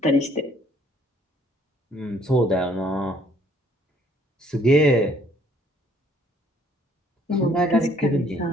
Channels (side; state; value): both; normal; correlation 0.62